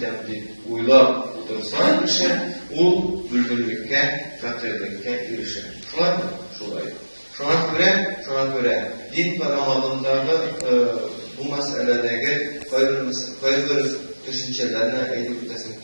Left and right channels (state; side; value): inverted; both; correlation -1.00